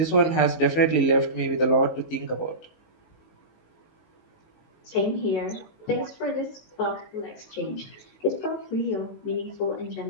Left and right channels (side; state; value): right; late; 19 ms